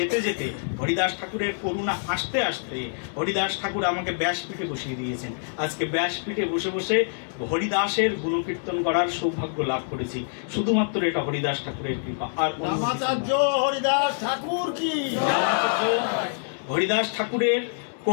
যেতে, হরিদাস ঠাকুরের করুণা আসতে আসতে হরিদাস ঠাকুর আমাকে ব্যাসপীঠে বসিয়ে দিয়েছেন। আজকে ব্যাসপীঠে বসে বসে হরিদাসের গুণকীর্তন করার সৌভাগ্য লাভ করেছি, শুধুমাত্র এটা হরিদাস ঠাকুরের কৃপা। আর হরিদাস ঠাকুর কি, হরিদাস ঠাকুরের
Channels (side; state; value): right; silent; digital silence